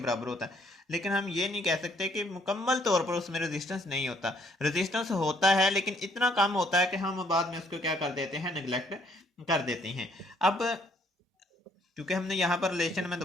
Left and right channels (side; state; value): both; normal; correlation 0.65